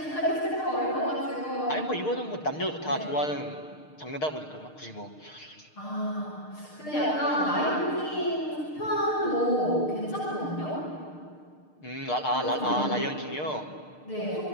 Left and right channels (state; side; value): late; right; 6.6 ms